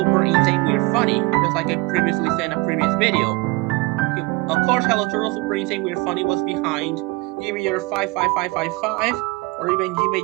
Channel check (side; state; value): left; quieter; 24.3 dB